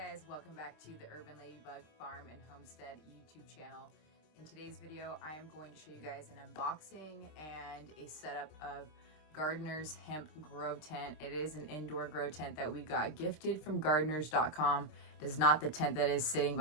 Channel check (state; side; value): late; right; 26 ms